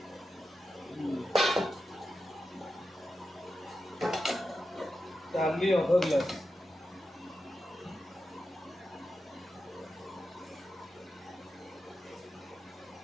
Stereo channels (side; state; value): both; normal; correlation 0.90